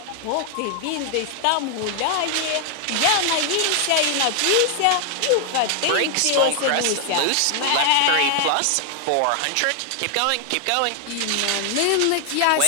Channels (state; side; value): different; both; correlation 0.00